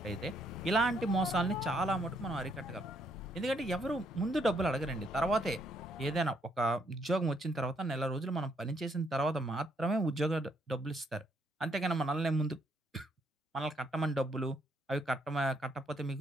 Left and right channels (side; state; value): both; normal; correlation 0.72